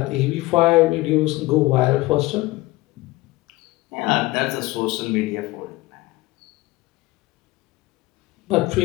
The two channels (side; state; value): right; quieter; 19.9 dB